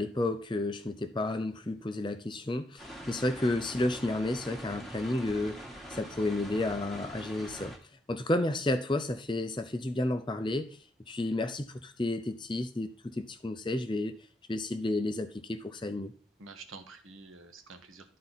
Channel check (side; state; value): both; normal; correlation 0.78